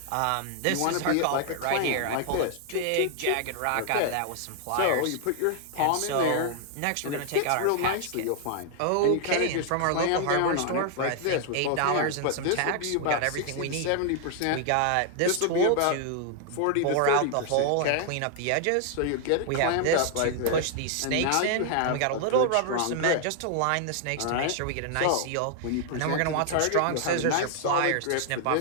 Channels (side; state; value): both; different; correlation 0.00